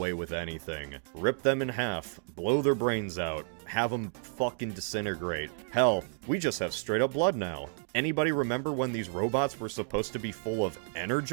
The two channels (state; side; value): silent; left; digital silence